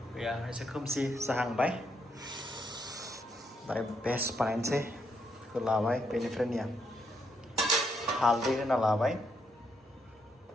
गैया एसे खोमसि जाहांबाय दायो बेस्ट बानायनोसै बेखौ लाबाय बेनिफ्राय निया हालदै होना लाबाय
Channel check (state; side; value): normal; both; correlation 0.76